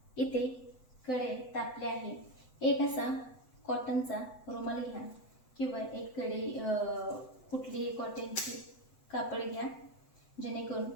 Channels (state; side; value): late; right; 7.9 ms